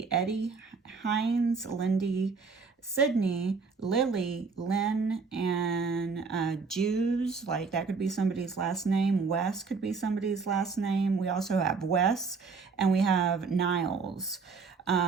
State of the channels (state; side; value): quieter; left; 4.8 dB